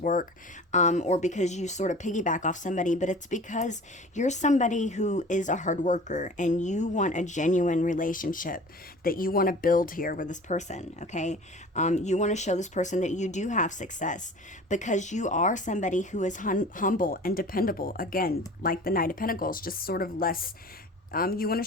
work, or because you sort of piggyback off somebody, but it's because you're somebody who is a hard worker and you want a genuine relationship that you want to build here with this person, okay? You want to show this person that you do have success because you are somebody who is humble and dependable. Again, like the Knight of Pentacles, just sort of less. You want to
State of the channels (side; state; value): both; normal; correlation 0.42